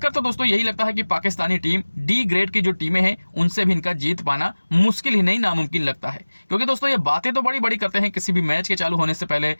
तो दोस्तों यही लगता है कि पाकिस्तानी टीम डी ग्रेड की जो टीमें हैं उनसे भी इनका जीत पाना मुश्किल ही नहीं नामुमकिन लगता है। क्योंकि दोस्तों ये बातें तो बड़ी बड़ी करते हैं किसी भी मैच के चालू होने से पहले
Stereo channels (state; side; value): inverted; both; correlation -1.00